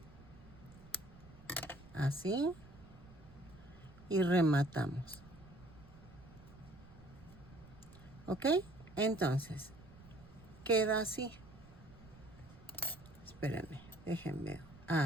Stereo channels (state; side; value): noise; right; rumble, 20 dB below the sound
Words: Así. Y rematamos. Ok, entonces queda así. Espérenme, déjenme.